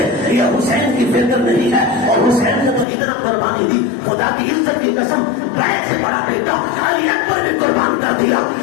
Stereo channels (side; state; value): right; drops out; at 2.9 s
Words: یہ حسین کی فکر نہیں ہے، اور حسین نے تو اتنا قربانی دی، خدا کی عزت کی قسم، بڑے سے بڑا بیٹا علی اکبر بھی قربان کر دیا،